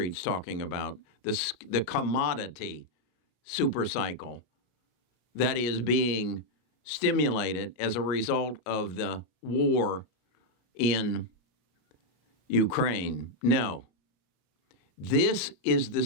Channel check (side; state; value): right; late; 33 ms